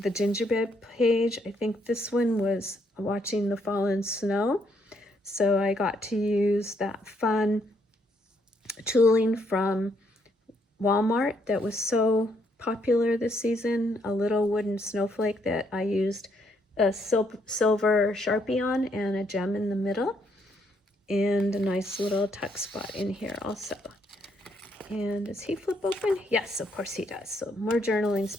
gingerbread page. I think this one was watching the fallen snow. So I got to use that fun tooling from Walmart that was so popular this season, a little wooden snowflake that I used a silver Sharpie on and a gem in the middle, and a nice little tuck spot in here also. And does he flip open? Yes, of course he does. So more journaling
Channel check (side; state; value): both; normal; correlation 0.72